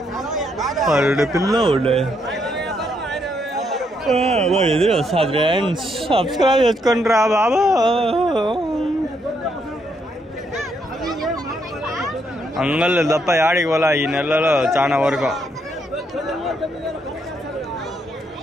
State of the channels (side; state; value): both; normal; correlation 0.75